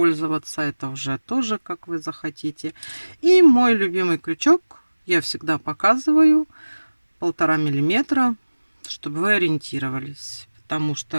Это уже тоже как вы захотите. И мой любимый крючок я всегда показываю 1,5 миллиметра, чтобы вы ориентировались. Потому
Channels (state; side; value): inverted; both; correlation -1.00